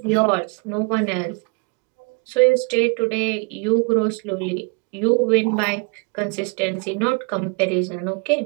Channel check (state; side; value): quieter; left; 33.5 dB